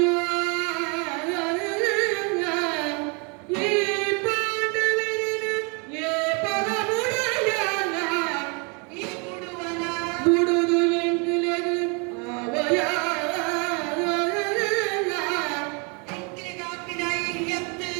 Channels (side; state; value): left; quieter; 32.9 dB